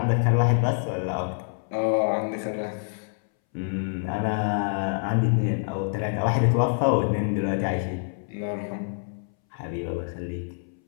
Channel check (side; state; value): right; silent; 61 dB below the other